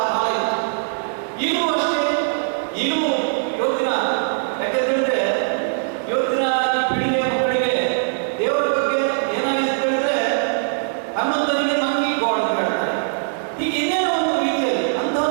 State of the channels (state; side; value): silent; left; digital silence